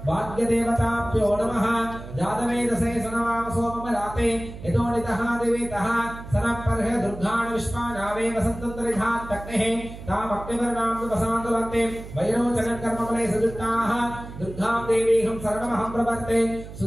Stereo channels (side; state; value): right; noise; hum, 13 dB below the sound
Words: भाग्यदेवताभ्यो नमः जातवेदसे सनवाम सोममलाते यतोनितः दिवेतः सनपर्ह दुर्गान् विश्वानावे वसन्तन्तरिधात् तक्नेः तामग्निवर्णां विवसान्तुलन्ते वैरोचनकर्मफले सजुष्टाः दुर्गां देवीहं सर्वमहं प्रपत्ते